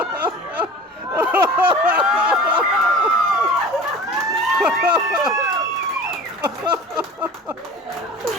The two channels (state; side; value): normal; both; correlation 0.38